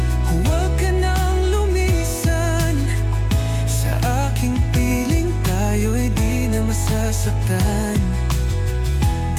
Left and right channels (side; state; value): both; identical; correlation 1.00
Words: huwag ka nang lumisan. Sa aking piling tayo'y di na masasaktan.